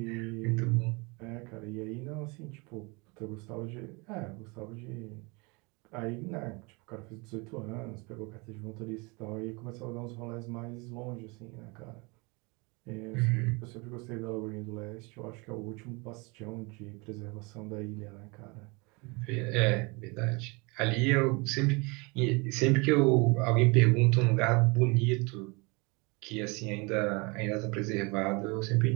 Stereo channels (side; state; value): left; quieter; 28.3 dB